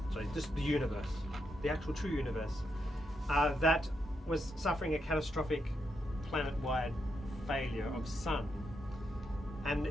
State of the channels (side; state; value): both; normal; correlation 0.82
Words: Sorry, just the universe, the actual true universe, that was suffering a catastrophic planet-wide failure of sun. And